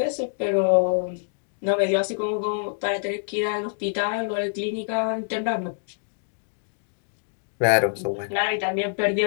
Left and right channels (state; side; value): silent; right; digital silence